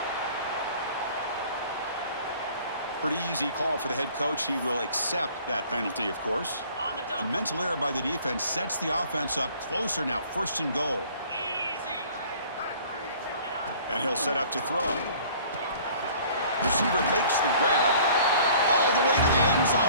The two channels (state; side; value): inverted; both; correlation -0.52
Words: Pretty easy call for the head coach. He will accept that penalty, of course. A mental error by the defense sets the offense up closer now. 1st and goal. And he'll set up to throw. Receiver makes the grab all the way to the end